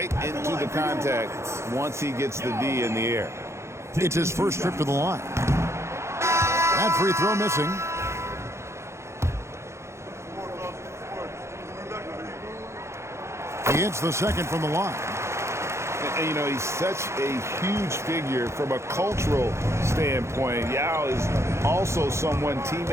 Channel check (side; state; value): left; late; 0.13 ms